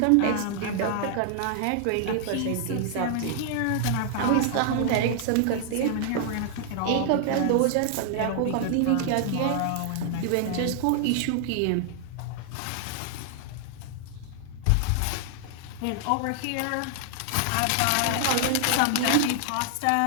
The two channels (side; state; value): both; different; correlation 0.00